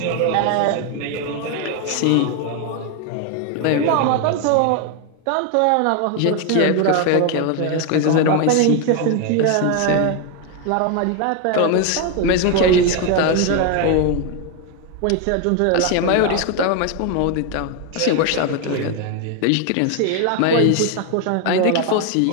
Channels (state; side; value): different; both; correlation 0.01